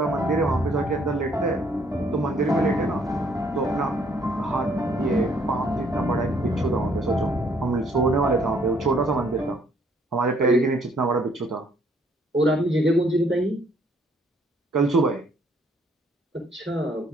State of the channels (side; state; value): both; normal; correlation 0.65